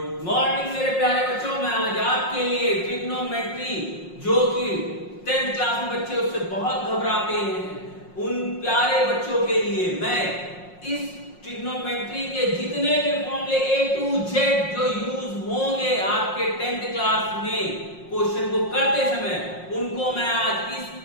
morning मेरे प्यारे बच्चों। मैं आज आपके लिए ट्रिग्नोमेट्री, जो कि 10th क्लास में बच्चे उससे बहुत घबराते हैं, उन प्यारे बच्चों के लिए मैं इस ट्रिग्नोमेट्री के जितने भी फॉर्मूले A to Z जो यूज होंगे आपके 10th क्लास में क्वेश्चन को करते समय, उनको मैं आज इस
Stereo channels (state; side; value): late; right; 5.6 ms